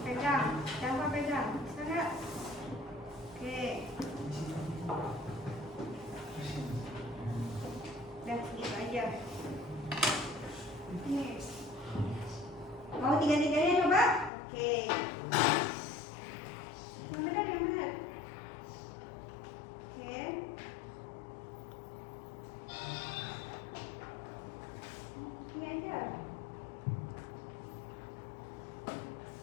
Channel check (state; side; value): drops out; right; at 14.3 s